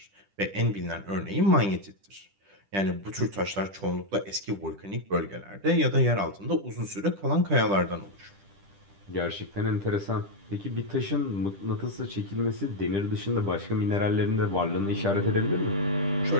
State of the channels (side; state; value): left; late; 10 ms